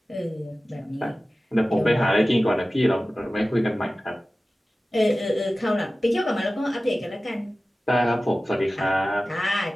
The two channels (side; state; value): both; normal; correlation 0.96